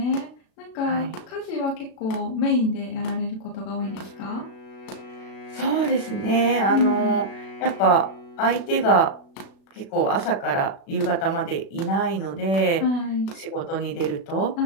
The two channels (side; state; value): right; late; 36 ms